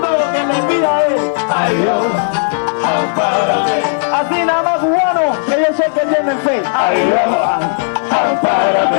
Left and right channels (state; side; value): silent; right; digital silence